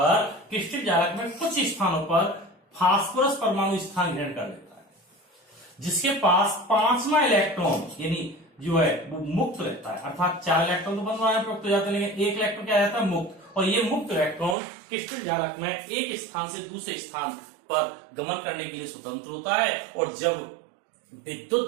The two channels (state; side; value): drops out; left; at 14.6 s